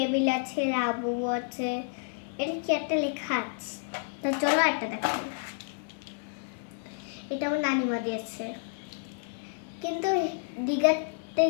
আছে, লাবু আছে, এটা কি একটা লেখা আছে। তো চলো একটা দেখাই। এটা আমার নানিমা দিয়েছে, কিন্তু দীঘাতে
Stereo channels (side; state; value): right; silent; 57 dB below the other